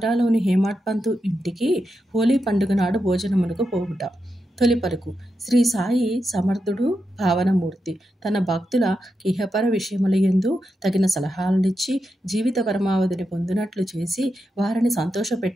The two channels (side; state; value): both; normal; correlation 0.87